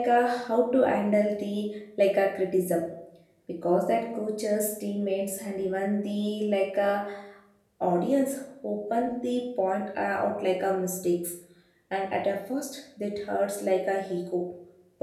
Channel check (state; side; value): identical; both; correlation 1.00